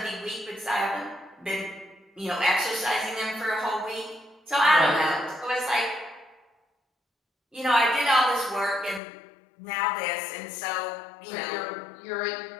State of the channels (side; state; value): right; drops out; at 9.0 s